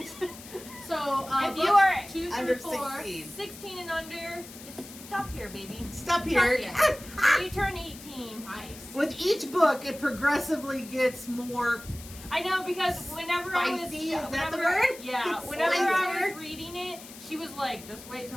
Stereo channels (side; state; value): left; noise; hiss, 16 dB below the sound